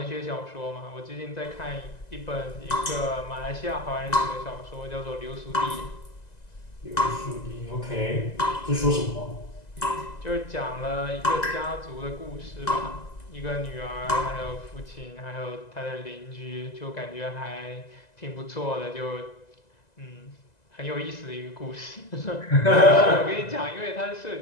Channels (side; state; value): right; late; 2.0 ms